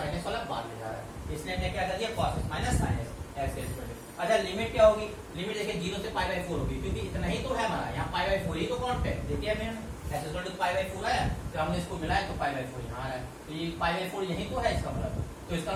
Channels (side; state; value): both; identical; correlation 1.00